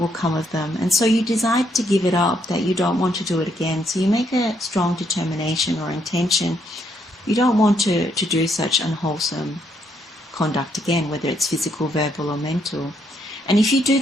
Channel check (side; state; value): both; normal; correlation 0.74